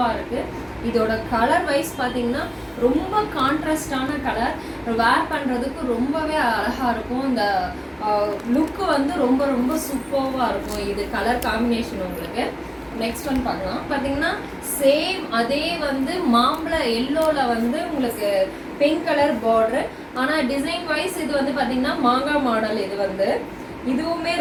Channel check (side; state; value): both; identical; correlation 1.00